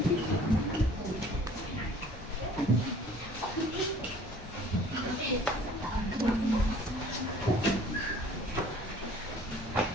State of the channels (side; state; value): both; normal; correlation 0.51